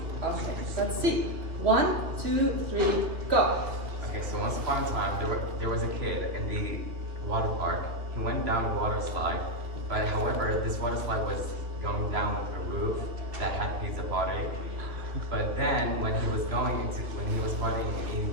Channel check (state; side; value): late; left; 2.6 ms